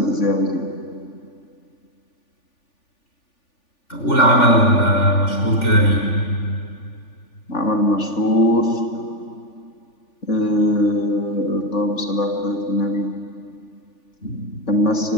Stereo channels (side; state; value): right; late; 3.5 ms